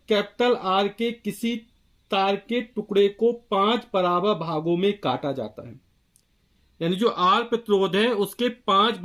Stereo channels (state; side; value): identical; both; correlation 1.00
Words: capital R के किसी तार के टुकड़े को 5 बराबर भागों में काटा जाता है। यानी जो आर प्रतिरोध है उसके 5